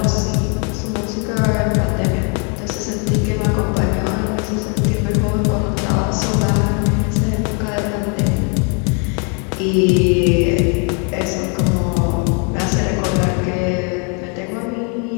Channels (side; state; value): right; quieter; 37.4 dB